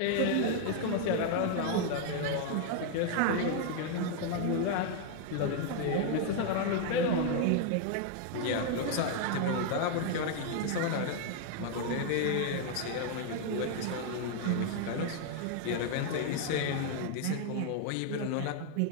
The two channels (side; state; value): both; different; correlation 0.00